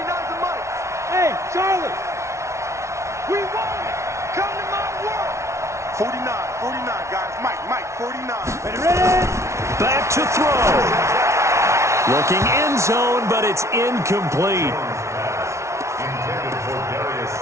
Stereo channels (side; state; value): left; late; 0.13 ms